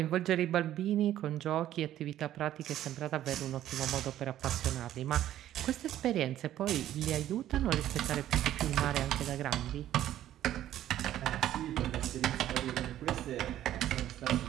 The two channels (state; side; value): quieter; left; 12.5 dB